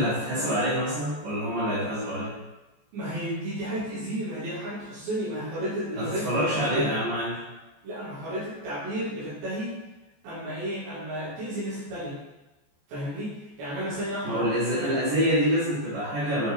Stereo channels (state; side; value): late; left; 14 ms